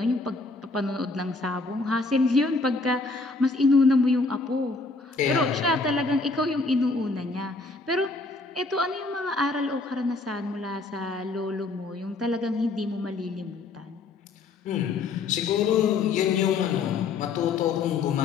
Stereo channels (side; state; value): right; quieter; 3.8 dB